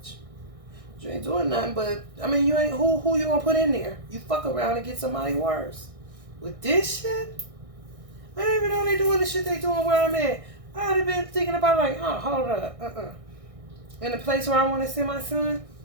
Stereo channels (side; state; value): left; late; 1.6 ms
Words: You ain't doing nothing, but you ain't who you gonna put in there? You fuck around and get somebody worse. With this shit, I didn't even know they doing the shit they doing where I'm at. I'd have been thinking about hold up, In the place where I want to send my son,